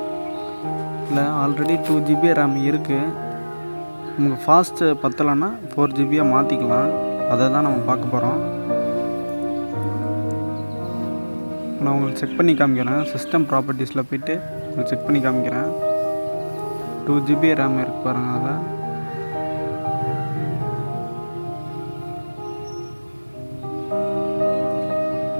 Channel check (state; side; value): inverted; both; correlation -1.00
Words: இல்லை ஆல்ரெடி 2 GB ரேம் இருக்குது. நமக்கு ஃபாஸ்ட்டு பத்தலைன்னா 4 GB மாற்றிக்கலாம். அதை தான் நம்ம பார்க்க போகிறோம். நான் உங்களுக்கு செக் பண்ணி காமிக்கிறேன். சிஸ்டம் ப்ராப்பர்ட்டிஸில் போய்ட்டு உங்களுக்கு செக் பண்ணி காமிக்கிறேன். 2 GB ரேம் இருக்கு பாருங்கள். அதை